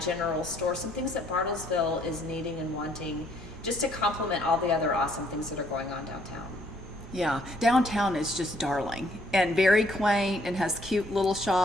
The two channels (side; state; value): both; normal; correlation 0.66